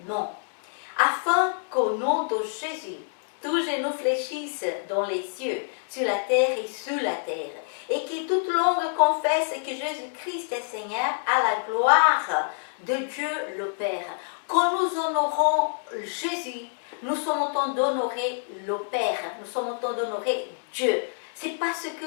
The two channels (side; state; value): right; silent; 60 dB below the other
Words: nom, afin qu'au nom de Jésus, tous genoux fléchissent dans les cieux, sur la terre et sous la terre, et que toute langue confesse que Jésus-Christ est Seigneur à la gloire de Dieu le Père. Quand nous honorons Jésus, nous sommes en train d'honorer le Père, nous sommes en train d'honorer Dieu. C'est parce que